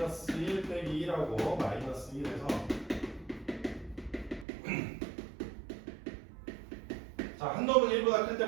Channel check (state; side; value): drops out; left; at 4.5 s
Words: 1 빼기 1하고 마이너스 1에서 자, 한 놈은 1보다 클